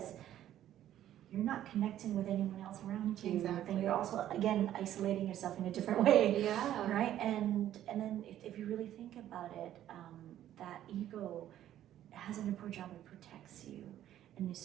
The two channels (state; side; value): quieter; left; 12.0 dB